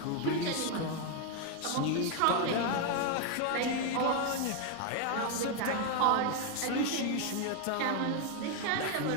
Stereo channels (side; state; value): both; different; correlation 0.01